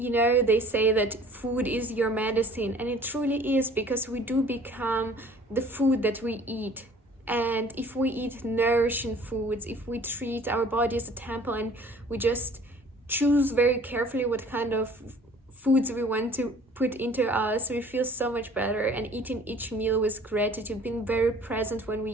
say that food is your medicine, and it truly is, because we do become the food that we eat. And if we eat nourishing foods, if we treat our body as a temple and we just choose very carefully what kind of foods we want to put into us, we feel so much better. And eating each meal with gratitude, being very present when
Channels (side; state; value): both; normal; correlation 0.51